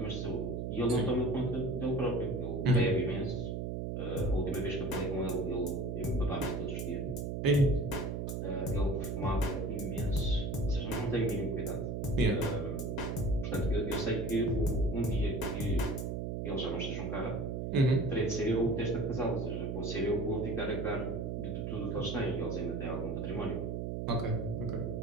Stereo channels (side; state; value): right; noise; hum, 3 dB below the sound